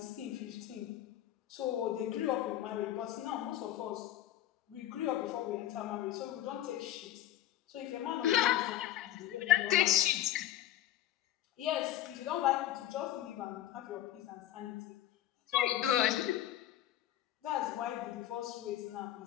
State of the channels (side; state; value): right; quieter; 12.8 dB